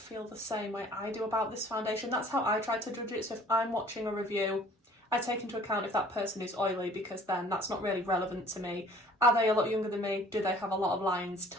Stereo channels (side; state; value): both; normal; correlation 0.52